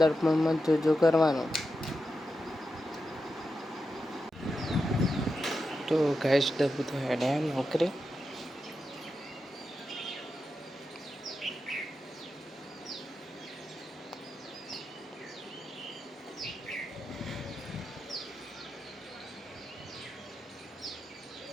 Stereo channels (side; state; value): both; normal; correlation 0.89